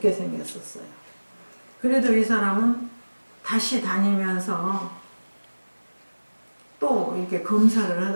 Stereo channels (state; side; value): inverted; both; correlation -1.00